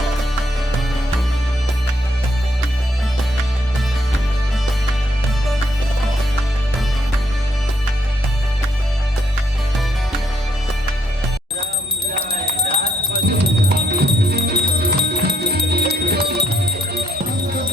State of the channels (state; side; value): normal; both; correlation 0.71